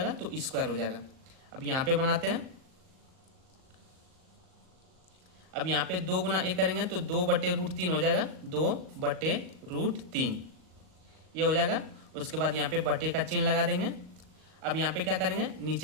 तो स्क्वायर हो जाएगा। अब यहाँ पे बनाते हैं। अब यहाँ पे 2 गुना 1 करेंगे तो 2/√3 हो जाएगा, 2/√3 ये हो जाएगा। उसके बाद यहाँ पे बटे का चिन्ह लगा देंगे। अब यहाँ पे क्या करेंगे?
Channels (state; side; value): late; left; 38 ms